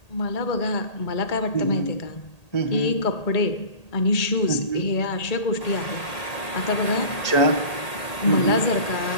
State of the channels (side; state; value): right; late; 1.8 ms